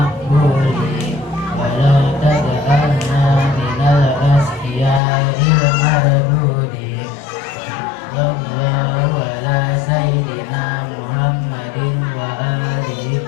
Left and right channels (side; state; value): right; drops out; at 5.0 s